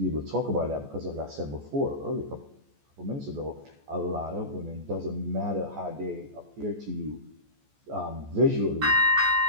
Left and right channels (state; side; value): late; left; 14 ms